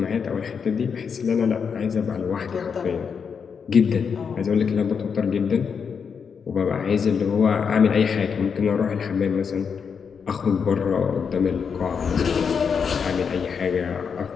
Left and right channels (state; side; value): quieter; right; 6.3 dB